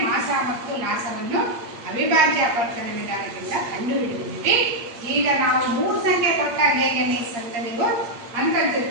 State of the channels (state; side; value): late; left; 8.5 ms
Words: ಮಾಸ ಮತ್ತು ಲಾಸವನ್ನು ಅವಿಭಾಜ್ಯ ಅಪವರ್ತನ ವಿಧಾನದಿಂದ ಕಂಡುಹಿಡಿದಿದ್ದೀವಿ. ಈಗ ನಾವು 3 ಸಂಖ್ಯೆ ಕೊಟ್ಟಾಗ ಹೇಗೆ ಮಿಸ್ ಅಂತ ನೀವು